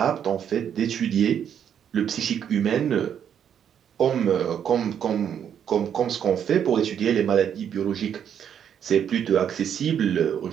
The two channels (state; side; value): quieter; left; 8.7 dB